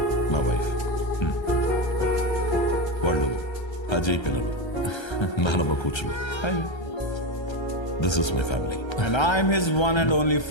నా వైఫ్. వాళ్ళు అజయ్ పిల్లలు, నానమ్మ కూచులు. Hi. This is my family. And I'm his one and only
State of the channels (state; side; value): late; right; 1.3 ms